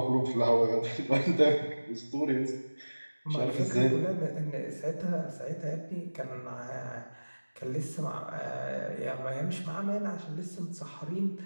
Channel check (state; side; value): inverted; both; correlation -1.00